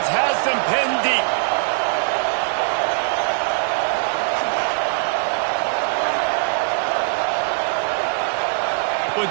has them pinned deep.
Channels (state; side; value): silent; left; digital silence